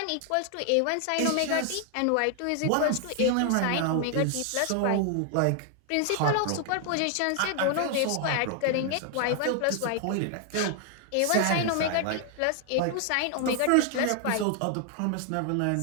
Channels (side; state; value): both; different; correlation 0.00